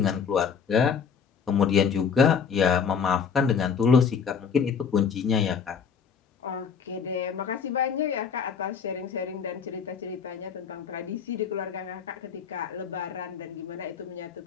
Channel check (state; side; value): quieter; right; 6.6 dB